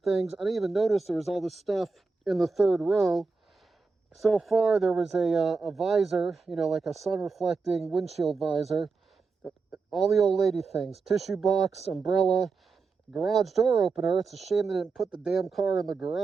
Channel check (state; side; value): quieter; left; 4.4 dB